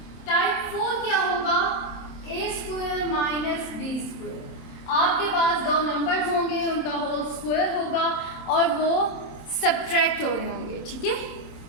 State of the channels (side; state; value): right; late; 27 ms